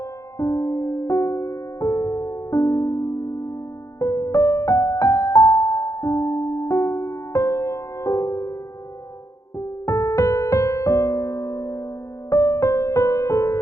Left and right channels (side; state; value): right; late; 0.15 ms